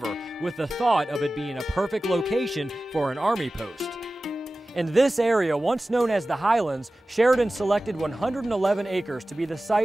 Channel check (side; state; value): both; normal; correlation 0.96